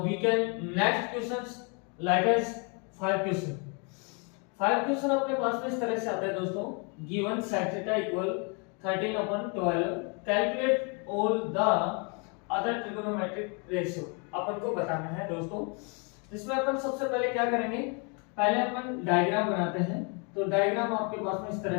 we can next questions like as 5 question 5 question अपने पास में इस तरह से आता है दोस्तों given sec theta equal 13/12 calculate all the other trigonometric ratio अपन को बताना है दोस्तों। इसमें अपन सबसे पहले क्या करेंगे, पहले अपन डायग्राम बनाते हैं। तो डायग्राम आपके पास में इस तरह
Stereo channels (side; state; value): right; quieter; 34.9 dB